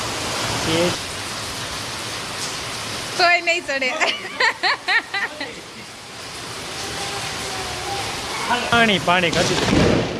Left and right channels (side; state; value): both; identical; correlation 1.00